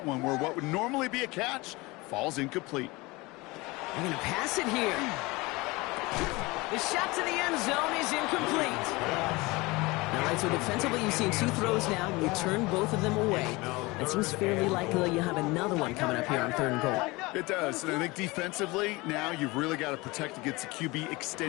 one where what would normally be a catch falls incomplete. They're going to pass it here. The shot to the end zone is incomplete. All right, so defensively you've seen 2 throws now, and you turn both of them away. It seems fairly likely you have another one coming up here on 3rd and goal. It does, and I think defensively, now you've really got to protect against the QB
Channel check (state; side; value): quieter; right; 23.1 dB